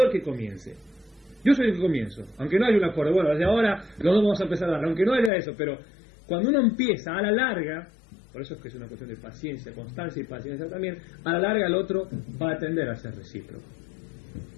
el que comience, yo soy el que comienzo, aunque no haya un acuerdo, bueno, desde ahora los dos vamos a empezar a dar, aunque no haya eso, pero cuando uno empieza a la larga, por eso es que es una cuestión de paciencia, constancia y paciencia también, a la larga el otro va a tender a ser recíproco.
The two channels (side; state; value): right; drops out; at 5.3 s